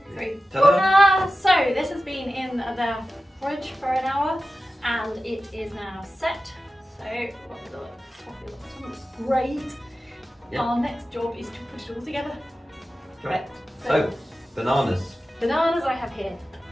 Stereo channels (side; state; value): both; normal; correlation 0.93